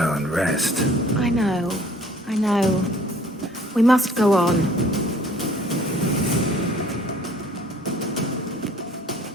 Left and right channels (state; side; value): normal; both; correlation 0.55